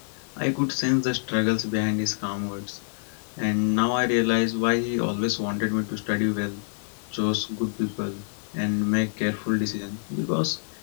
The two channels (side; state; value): right; silent; digital silence